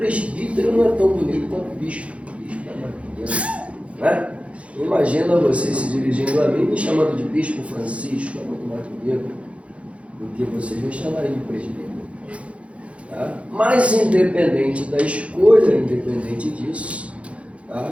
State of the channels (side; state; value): left; late; 0.062 ms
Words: não é tão bonito quanto bispo. Bispo é mais bonito, né? Imagina você se dirigindo a mim me chamando de Bispo Francisco, é muito mais bonito do que vocês me chamarem de presbítero. Tá? Mas independente da escolha, independente disso,